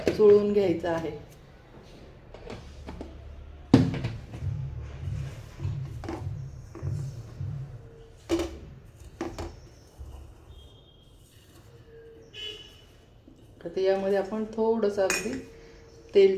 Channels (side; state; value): both; identical; correlation 1.00